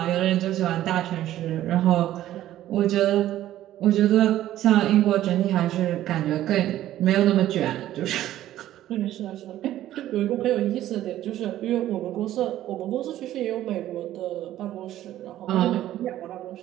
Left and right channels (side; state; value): left; quieter; 13.3 dB